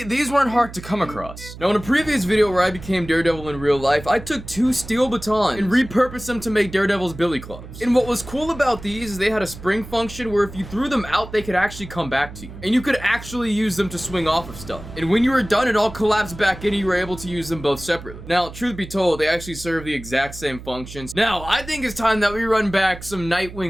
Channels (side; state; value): right; noise; hum, 14 dB below the sound